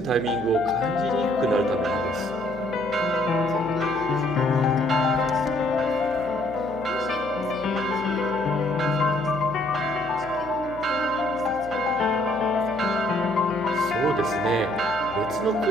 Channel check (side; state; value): left; noise; hum, 15 dB below the sound